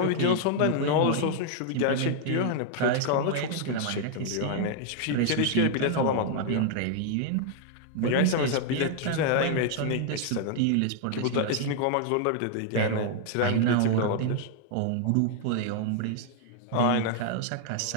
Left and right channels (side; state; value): both; different; correlation 0.00